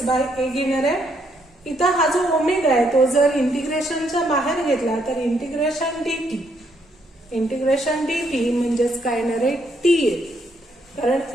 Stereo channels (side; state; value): both; normal; correlation 0.73